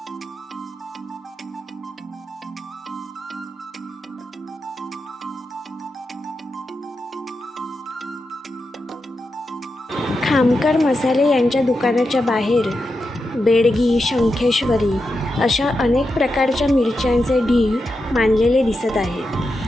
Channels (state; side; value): normal; both; correlation 0.88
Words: खामकर मसाले यांच्या दुकानाच्या बाहेर बेडगी, शंखेश्वरी अशा अनेक प्रकारच्या मिरच्यांचे ढीग मांडलेले दिसत